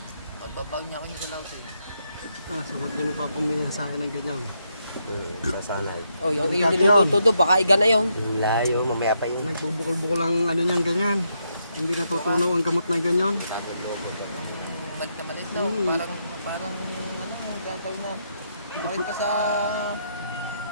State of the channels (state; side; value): inverted; both; correlation -0.79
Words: Magbabag niya ako yung sa laos eh. So huwag ganun pa pumili sa akin ng ganyan. Sasanay. Oh, yung niluluto doon, baka iga na yun. Yung layo, mamaya pa yung... Nagbubukol-bukol ang ano niyan ganyan. Hindi natutunaw ang gamot na ganyan. Malit na malit daw. Parang gagawin na. Malit na sa